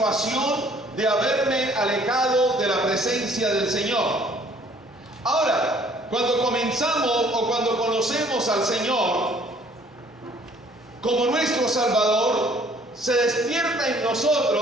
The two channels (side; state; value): both; normal; correlation 0.58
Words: de haberme alejado de la presencia del Señor. Ahora, cuando comenzamos o cuando conocemos al Señor como nuestro Salvador, se despierta en